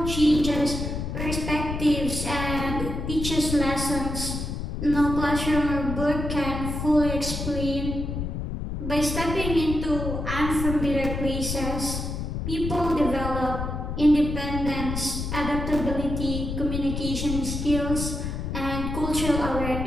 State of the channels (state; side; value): noise; left; rumble, 4 dB below the sound